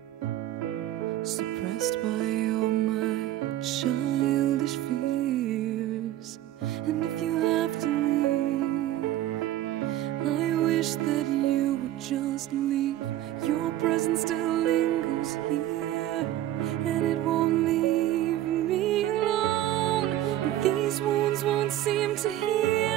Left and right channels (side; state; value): left; quieter; 13.5 dB